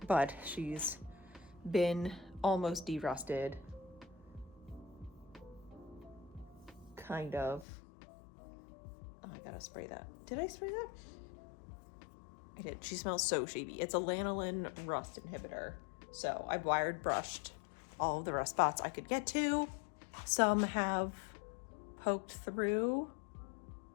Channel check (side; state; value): right; drops out; at 7.7 s